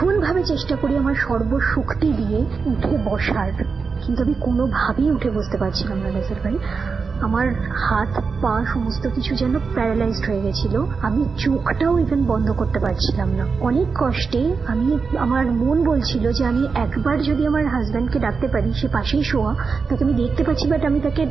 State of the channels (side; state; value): left; quieter; 5.0 dB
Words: চেষ্টা করি আমার সর্বশক্তি দিয়ে উঠে বসার, কিন্তু আমি কোনোভাবেই উঠে বসতে পারছিলাম না রাসেল ভাই। আমার হাত পা সমস্ত কিছু যেন প্যারালাইজড হয়ে গেছিল। আমি চোখটাও ইভেন বন্ধ করতে পারছিলাম না। অনেক কষ্টে আমার মন বলছিল যে আমি একবার যদি আমার হাজব্যান্ডকে ডাকতে পারি, সে পাশেই শোয়া, তাকে আমি দেখতে পাচ্ছি, বাট আমি তাকে